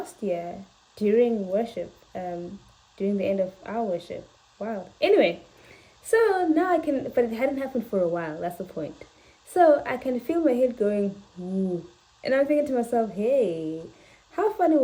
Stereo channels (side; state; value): both; identical; correlation 1.00